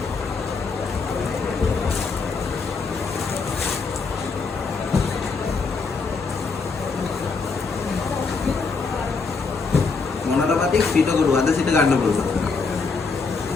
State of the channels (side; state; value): right; quieter; 4.6 dB